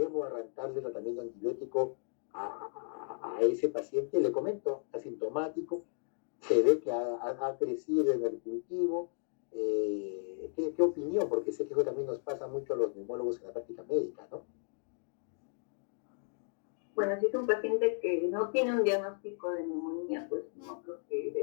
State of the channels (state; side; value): silent; right; 55 dB below the other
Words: arrancarle el tratamiento antibiótico a ese paciente? Le comento, asintomático, se ve que ha crecido en el cultivo. ¿Qué opinión? Porque sé que eso también nos pasa mucho a los neumólogos en la práctica médica, ¿no? Bueno, si es un paciente que no tiene un diagnóstico de neumonía, pues no creo que